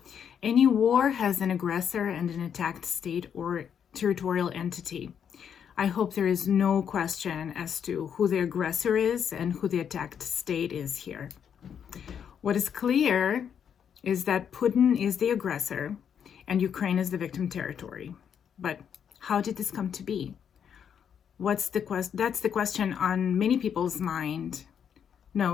Any war has an aggressor and an attacked state or territorial entity. I hope there is no question as to who the aggressor is and who the attacked state is here. What is clear is that Putin is the aggressor and Ukraine is the victim territory. But how did this come to be? That's the question on many people's mind.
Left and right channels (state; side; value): quieter; right; 8.0 dB